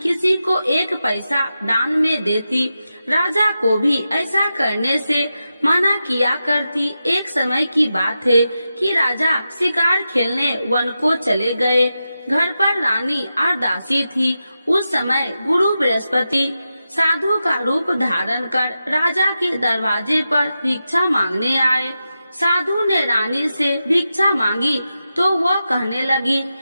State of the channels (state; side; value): inverted; both; correlation -0.90